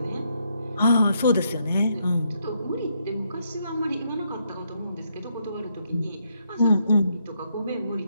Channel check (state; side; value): inverted; both; correlation -0.76